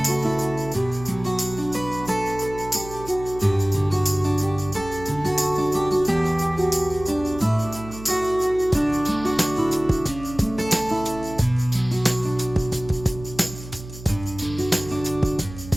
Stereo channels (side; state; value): right; noise; hum, 14 dB below the sound